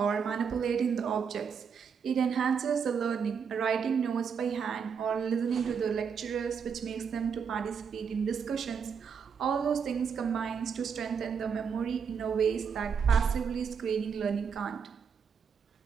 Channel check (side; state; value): left; quieter; 6.6 dB